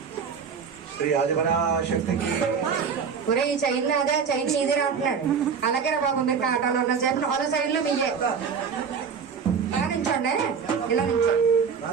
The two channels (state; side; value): quieter; left; 6.3 dB